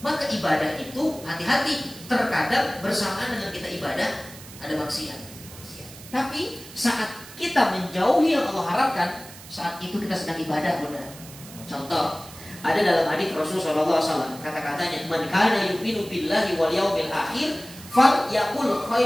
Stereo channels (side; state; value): right; noise; hiss, 17 dB below the sound